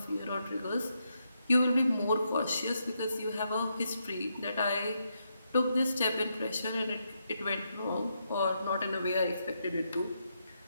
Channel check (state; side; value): inverted; both; correlation -0.81